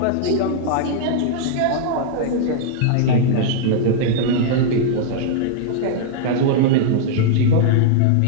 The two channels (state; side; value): different; both; correlation -0.01